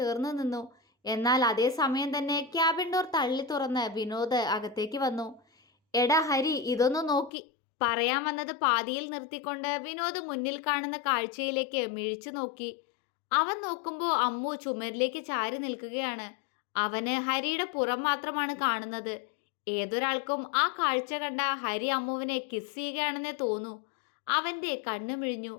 നിന്നു. എന്നാൽ അതേ സമയം തന്നെ ക്യാബിൻ ഡോർ തള്ളി തുറന്ന് വിനോദ് അകത്തേക്ക് വന്നു. എടാ ഹരി, ഇതൊന്നു നോക്കി. പറയാൻ വന്നത് പാതിയിൽ നിർത്തിക്കൊണ്ട് വിനോദ് മുന്നിൽ കാണുന്ന കാഴ്ചയിലേക്ക് മിഴിച്ചു നോക്കി. അവൻ നോക്കുമ്പോൾ അമ്മു ചുമരിലേക്ക് ചാരി നിൽക്കുകയാണ്. അവന് ഹരിയുടെ പുറം മാത്രമാണ് കാണുന്നത്. ഏതൊരാൾക്കും ആ കാഴ്ച കണ്ട ഹരി അമ്മുവിനെ കിസ് ചെയ്യുകയാണെന്നേ തോന്നൂ. അവന്റെ കണ്ണു മിഴിഞ്ഞു.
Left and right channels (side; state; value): right; drops out; at 7.3 s